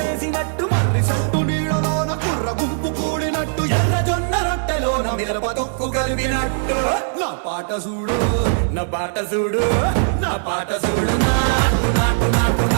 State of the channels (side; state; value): left; silent; digital silence